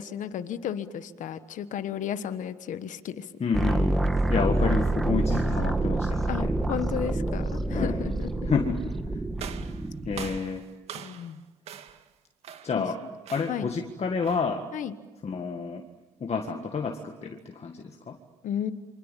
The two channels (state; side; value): normal; both; correlation 0.73